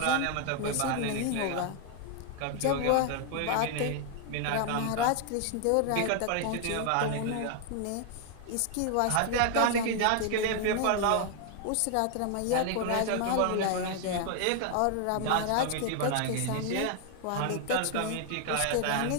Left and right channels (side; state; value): both; different; correlation 0.00